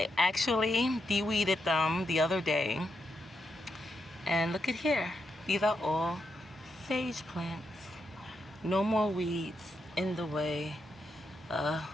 actually de-weeded them the other day. And look at here. These are all sage plants. No more weeds in the way,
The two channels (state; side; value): normal; both; correlation 0.83